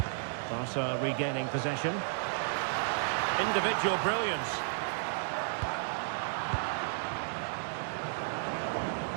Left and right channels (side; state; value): left; silent; digital silence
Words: Barca regaining possession. Individual brilliance.